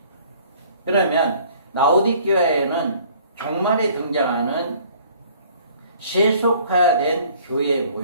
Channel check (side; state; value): both; inverted; correlation -0.55